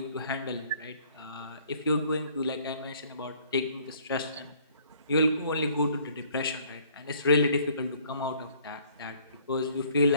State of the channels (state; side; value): inverted; both; correlation -0.59